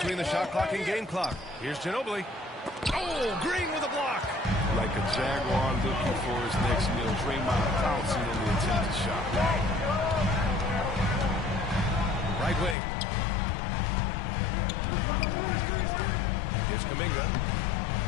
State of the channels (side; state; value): right; drops out; at 12.8 s